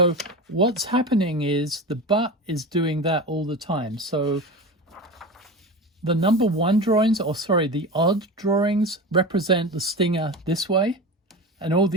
what's happening is the butt is doing that all the time. So the number 1 drawings, or sorry, the odd drawings represent the stinger this way, and all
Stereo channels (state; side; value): normal; both; correlation 0.27